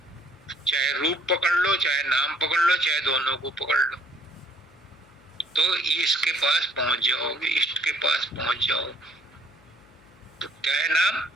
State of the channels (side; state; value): left; noise; hum, 28 dB below the sound